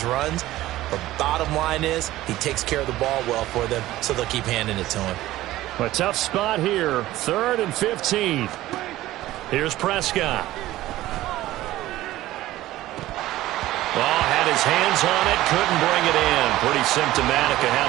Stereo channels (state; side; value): quieter; left; 15.8 dB